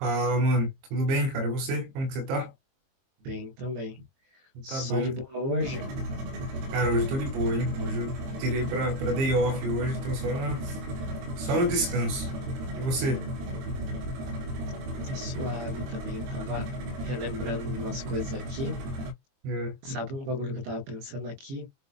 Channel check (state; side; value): late; left; 22 ms